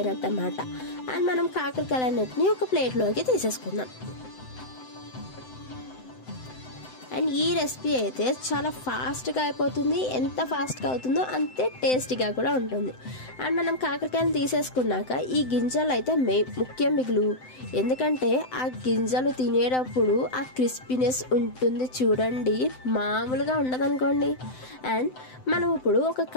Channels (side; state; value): right; late; 7.8 ms